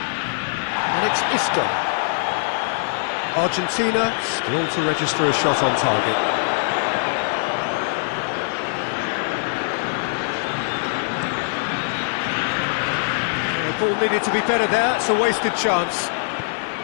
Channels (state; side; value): silent; right; digital silence